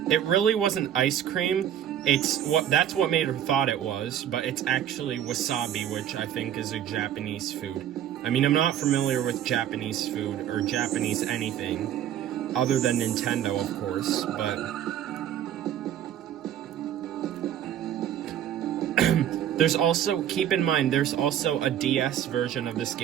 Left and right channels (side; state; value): left; quieter; 10.5 dB